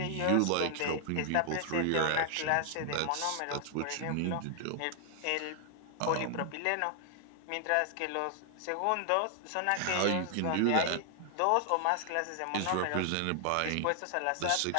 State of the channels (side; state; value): both; different; correlation 0.00